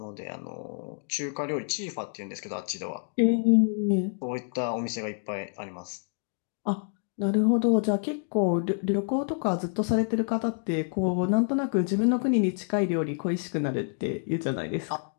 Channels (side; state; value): right; silent; digital silence